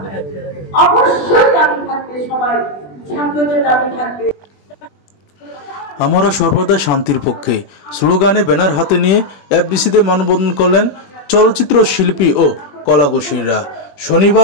অবশ্যই দাবি থাকবে, সবাই ছাত্রদের দাবি থাকবে। আমরা সর্বদা শান্তির পক্ষে স্লোগানে ব্যানার হাতে নিয়ে এফডিসিতে মানববন্ধন করলেন চলচ্চিত্র শিল্পী ও কলাকুশলীরা।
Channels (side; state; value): right; late; 21 ms